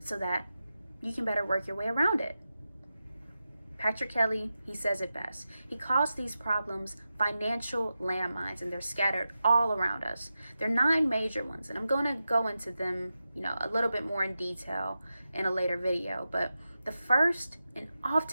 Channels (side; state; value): both; inverted; correlation -0.92